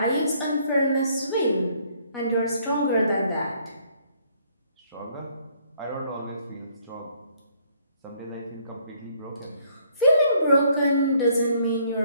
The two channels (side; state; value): both; inverted; correlation -0.65